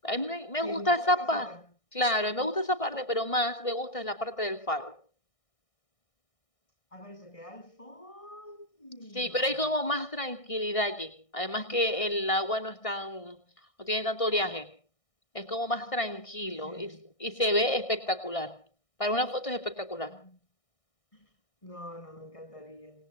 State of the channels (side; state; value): right; late; 1.6 ms